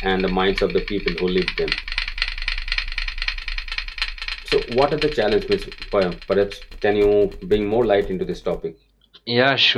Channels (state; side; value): identical; both; correlation 1.00